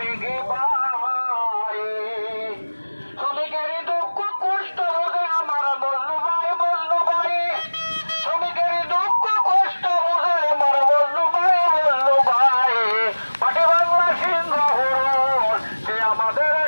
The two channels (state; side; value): inverted; both; correlation -1.00